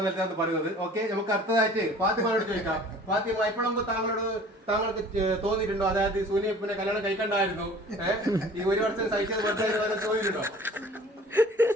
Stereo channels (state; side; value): normal; both; correlation 0.48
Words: നൽകാന്ന് പറയുന്നത്. ഓക്കെ, നമുക്ക് അടുത്തതായിട്ട് ഫാത്തിമയോട് ചോദിക്കാം. ഫാത്തിമ, എപ്പോഴും താങ്കൾക്ക് തോന്നിയിട്ടുണ്ടോ, അതായത് സുനീഫിനെ കല്യാണം കഴിക്കണ്ടായിരുന്നു, ഈ ഒരു വർഷം സഹിച്ചത് തോന്നിയിട്ടുണ്ടോ?